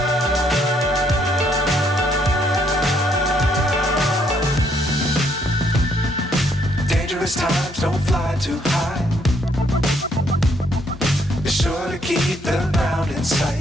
Dangerous times, don't fly too high. Be sure to keep the ground in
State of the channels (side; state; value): both; normal; correlation 0.70